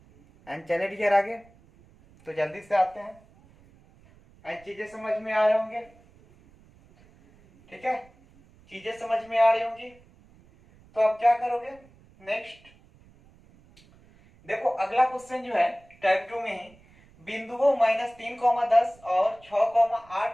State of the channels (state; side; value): noise; right; rumble, 28 dB below the sound